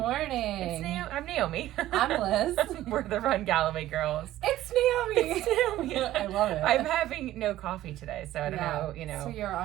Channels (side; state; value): left; quieter; 14.4 dB